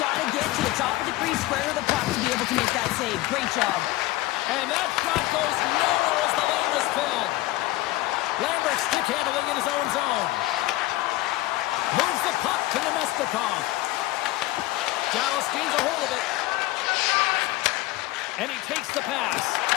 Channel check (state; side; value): quieter; right; 18.4 dB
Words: to get to the top of the crease, square of the puck to be able to make that save. Great job. And that shot goes nowhere as the lane was filled. Lambert stick handling in his own zone. Moves the puck to Nemestikov. Dallas gains a hold of it. And he takes the pass.